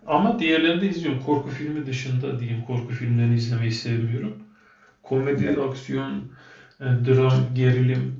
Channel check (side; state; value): both; identical; correlation 1.00